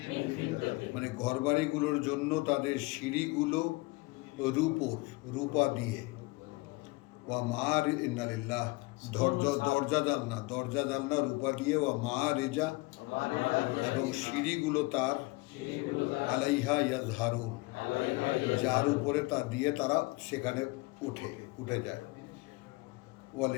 মানে ঘরবাড়িগুলোর জন্য তাদের সিঁড়িগুলো রূপা দিয়ে, ওয়া মার ইন্নালিল্লাহ, দরজা জানলা রূপা দিয়ে, ওয়া মারিজা, এবং সিঁড়িগুলো তার, আলাইহা ইয়াজহারুন, যার উপরে তা দিয়ে তারা সেখানে উঠে যায়।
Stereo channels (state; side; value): quieter; right; 24.2 dB